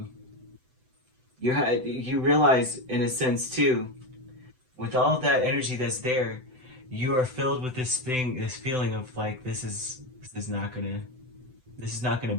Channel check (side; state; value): left; late; 7.8 ms